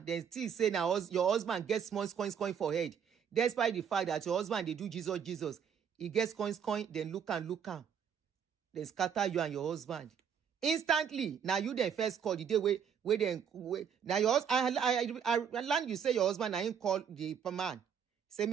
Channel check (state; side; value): quieter; left; 7.7 dB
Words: Then still say now your husband gets small coins for head. Despite the fact that your husband, they do Jesus. He gets coins, then look am. Then scatter you and your husband. Instantly, now you then first call the day where now your husband, I learned you say your husband, I ain't call the man. Say